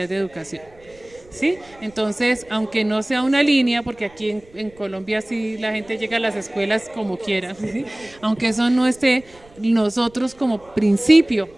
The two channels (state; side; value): noise; right; rumble, 27 dB below the sound